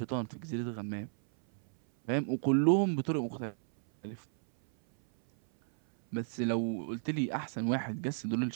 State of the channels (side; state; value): left; silent; 56 dB below the other